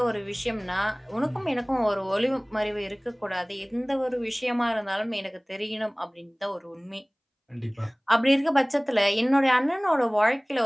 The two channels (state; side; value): identical; both; correlation 1.00